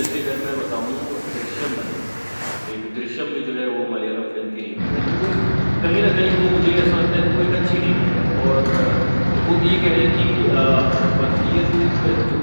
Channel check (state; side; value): inverted; both; correlation -1.00